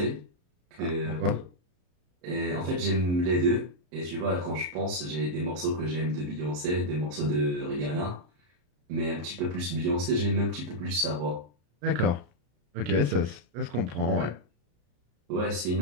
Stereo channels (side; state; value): left; late; 34 ms